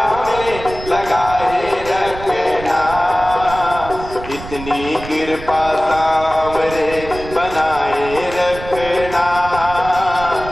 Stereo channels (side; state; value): right; noise; rumble, 12 dB below the sound